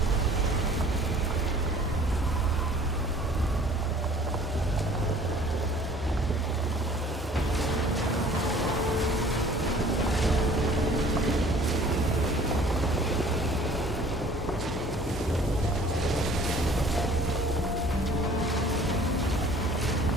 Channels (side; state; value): both; normal; correlation 0.51